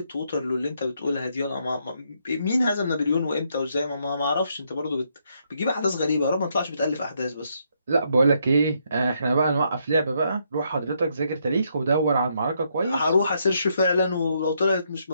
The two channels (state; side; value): inverted; both; correlation -0.75